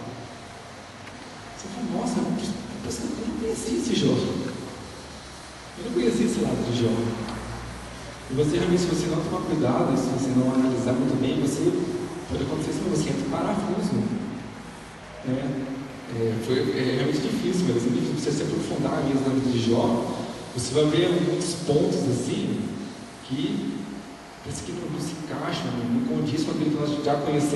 você fala, nossa, eu não conhecia esse Jó, eu não conhecia esse lado de Jó. E você realmente, se você não tomar cuidado, se você não analisar muito bem, você pode acontecer isso, você entra em parafuso, né? Foi realmente difícil, mas é difícil você se aprofundar mesmo na vida de Jó. Você vai ver muitos pontos assim que parece que não se encaixam, não condiz com aquilo que nós já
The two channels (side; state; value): both; identical; correlation 1.00